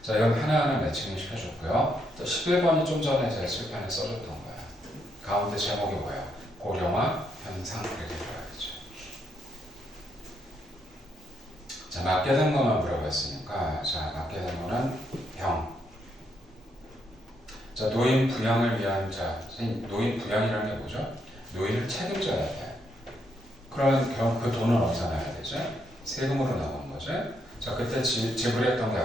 자, 이건 하나하나 매칭을 시켜줬고요. 또 11번이 좀 전에 제가 칠판에 써줬던 거야. 가운데 제목이 뭐예요? 고령화 현상 이렇게 들어가겠죠. 자, 맞게 된 것만 물어봤으니까 자, 맞게 된 거는 병. 자, 노인 부양을 위한 자, 노인 부양이라는 게 뭐죠? 노인을 책임져야 돼. 그럼 결국 그 돈은 어디서 나야 되죠? 세금으로 나오는 거죠. 자, 그때 지불했던 게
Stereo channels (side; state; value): both; normal; correlation 0.77